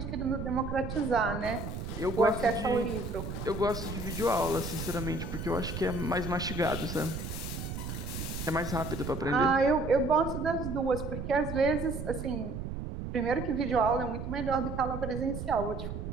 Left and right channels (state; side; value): noise; right; rumble, 6 dB below the sound